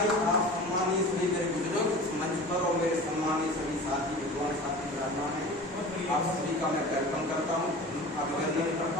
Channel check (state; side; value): normal; both; correlation 0.37